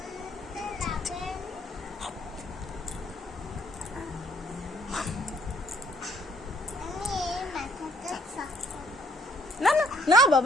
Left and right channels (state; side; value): normal; both; correlation 0.65